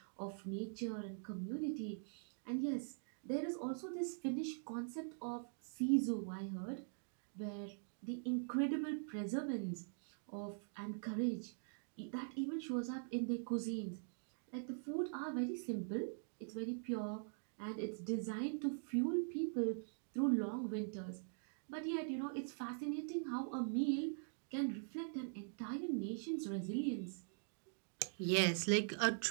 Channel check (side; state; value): left; silent; digital silence